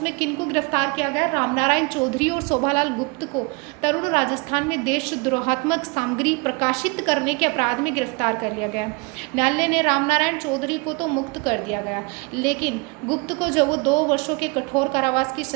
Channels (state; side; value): quieter; left; 29.9 dB